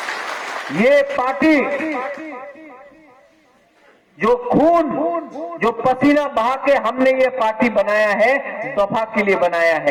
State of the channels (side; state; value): both; identical; correlation 1.00